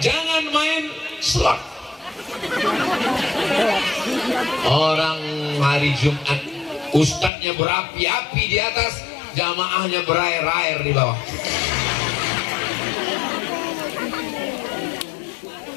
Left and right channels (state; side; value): drops out; right; at 7.3 s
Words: jangan main slot. Orang hari Jumat ustadznya berapi-api di atas, jamaahnya berair-air di bawah.